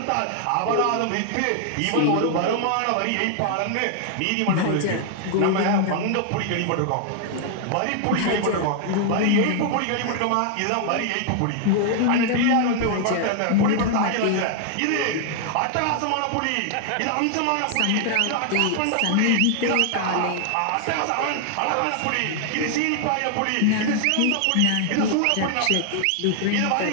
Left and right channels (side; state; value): both; different; correlation 0.00